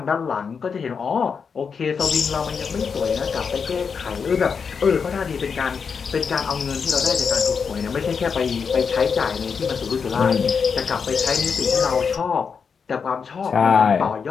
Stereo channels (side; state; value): right; quieter; 6.0 dB